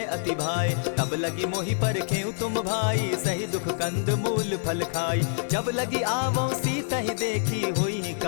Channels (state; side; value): silent; right; digital silence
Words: अति भाए तब लगी मोहि परखेउ तुम भाई सही दुख कंद मूल फल खाई जब लगी आवो सीता ही देखी होई